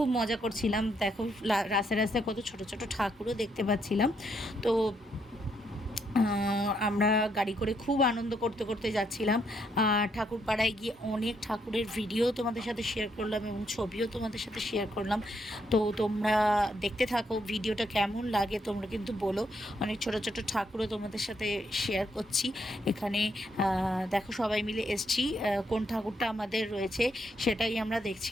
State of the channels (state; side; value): normal; both; correlation 0.75